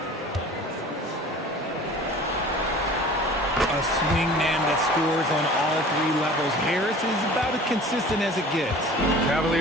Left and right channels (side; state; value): both; normal; correlation 0.44